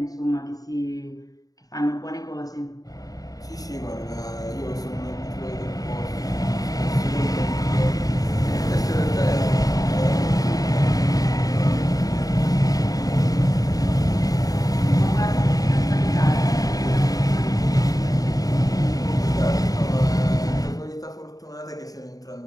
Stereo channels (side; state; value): right; late; 0.18 ms